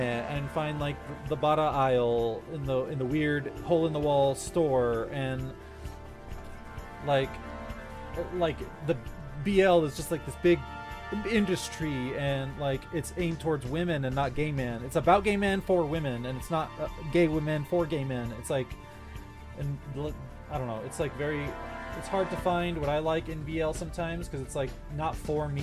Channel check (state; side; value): identical; both; correlation 1.00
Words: find like the Bara aisle in the weird hole in the wall store, and like the BL is just like this big industry, and like it's aimed towards women and not gay men. It's about gay men for women, and it's not gay women for gay men. It's like, and I don't know, it's like very, it's hard to find what I like in BL sometimes, because it's like not for